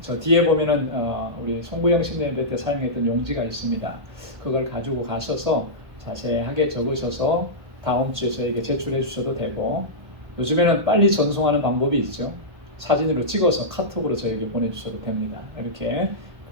저 뒤에 보면은 우리 송구영 신대회 때 사용했던 용지가 있습니다. 그걸 가지고 가셔서 자세하게 적으셔서 다음 주에 저에게 제출해 주셔도 되고, 요즘에는 빨리 전송하는 방법이 있죠. 사진으로 찍어서 카톡으로 저에게 보내주셔도 됩니다. 이렇게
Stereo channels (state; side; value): late; left; 1.4 ms